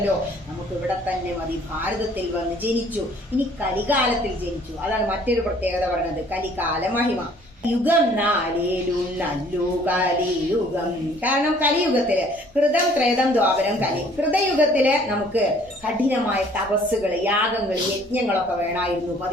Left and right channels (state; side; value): normal; both; correlation 0.57